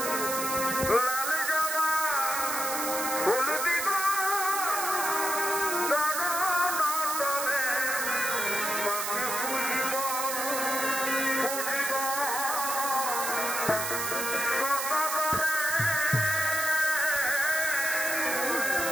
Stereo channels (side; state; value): right; noise; hiss, 2 dB below the sound